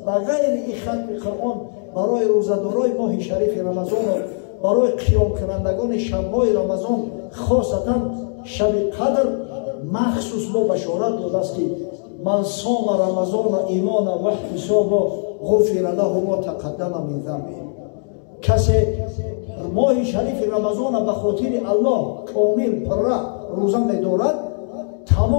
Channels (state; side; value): silent; right; digital silence